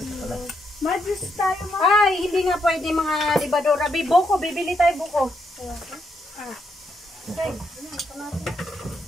Mag-juice tayo, ma. Ay, hindi nga pwede mga libadora. Buko, bibili tayo buko. Ah. Okay.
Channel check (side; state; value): both; normal; correlation 0.78